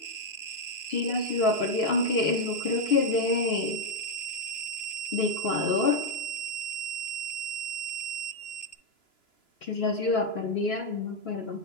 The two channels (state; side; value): late; right; 2.9 ms